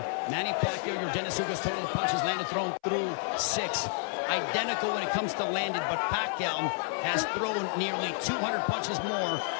Manny Pacquiao, your Dennis Ugas. Total punches landed, thrown through 6. Identical when it comes to landed, but Pacquiao has thrown nearly 200 punches more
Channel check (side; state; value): right; silent; 58 dB below the other